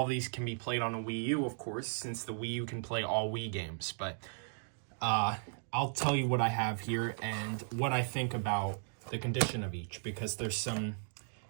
these can be played on a Wii U, of course, since the Wii U can play all Wii games. But I'll tell you what I have here and what I think about the condition of each, because there's some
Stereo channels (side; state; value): left; silent; digital silence